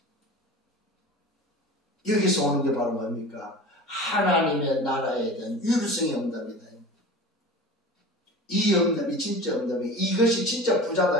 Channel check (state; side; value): normal; both; correlation 0.35